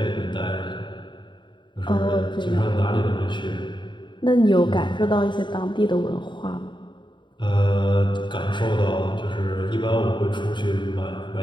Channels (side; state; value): right; late; 0.23 ms